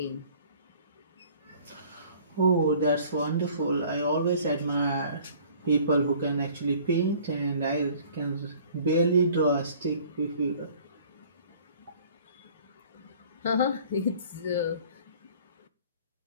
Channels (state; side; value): inverted; both; correlation -0.52